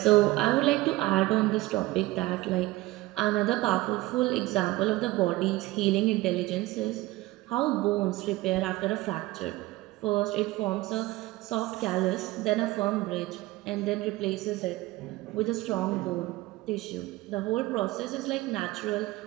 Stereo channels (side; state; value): left; quieter; 18.9 dB